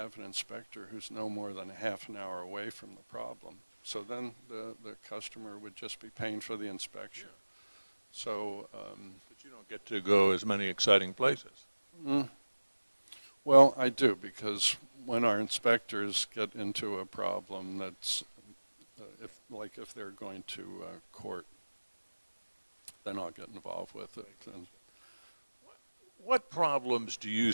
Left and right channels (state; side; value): inverted; both; correlation -1.00